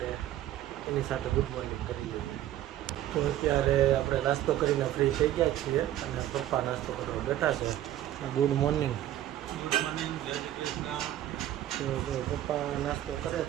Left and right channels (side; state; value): left; quieter; 12.9 dB